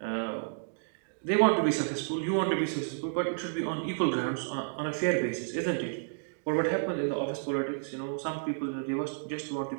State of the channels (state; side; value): silent; left; digital silence